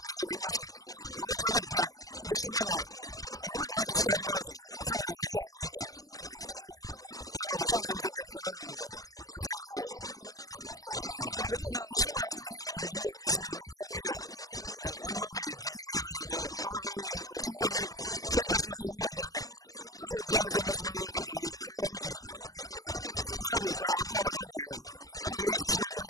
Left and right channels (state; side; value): late; right; 0.17 ms